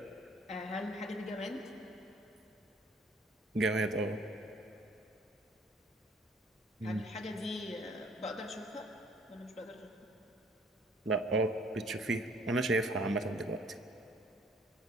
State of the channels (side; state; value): both; normal; correlation 0.58